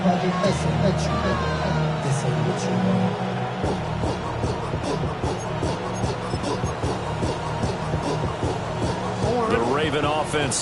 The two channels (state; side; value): identical; both; correlation 1.00